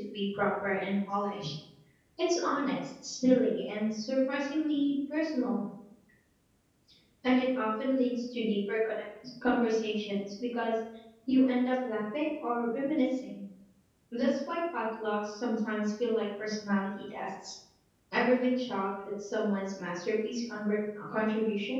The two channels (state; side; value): identical; both; correlation 1.00